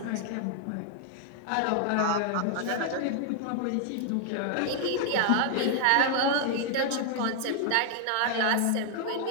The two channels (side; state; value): both; different; correlation 0.00